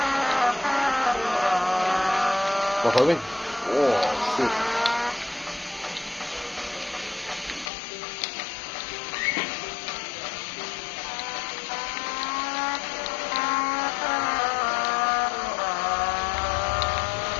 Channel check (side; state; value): right; drops out; at 7.7 s